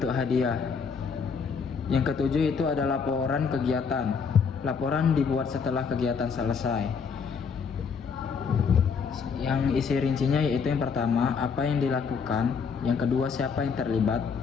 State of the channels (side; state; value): right; quieter; 5.8 dB